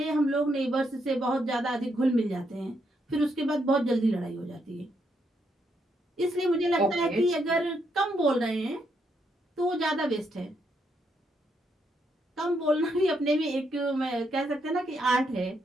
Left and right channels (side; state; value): both; normal; correlation 0.77